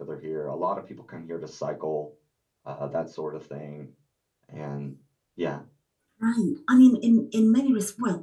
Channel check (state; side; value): identical; both; correlation 1.00